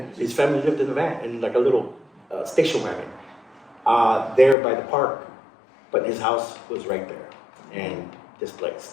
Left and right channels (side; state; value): right; drops out; at 4.5 s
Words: his family lived in a van, in like a little station wagon, there by the park. But his house was right there and